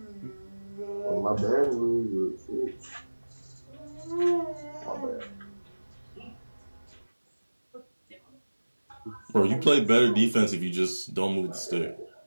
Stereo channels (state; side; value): inverted; both; correlation -1.00